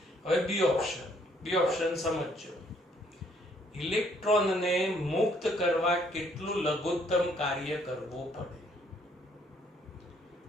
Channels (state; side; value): normal; both; correlation 0.66